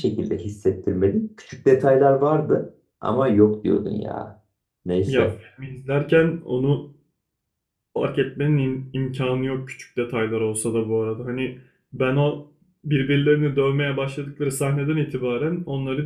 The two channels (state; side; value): identical; both; correlation 1.00